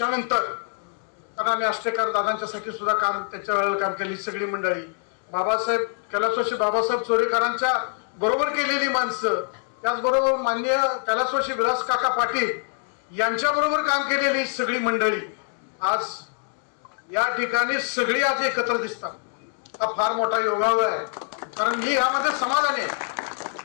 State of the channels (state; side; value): silent; right; 62 dB below the other